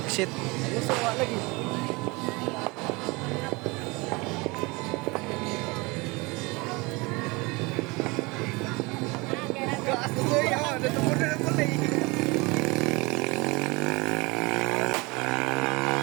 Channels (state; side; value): quieter; left; 25.5 dB